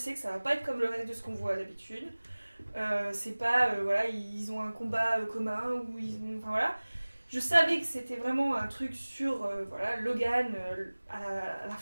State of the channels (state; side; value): inverted; both; correlation -1.00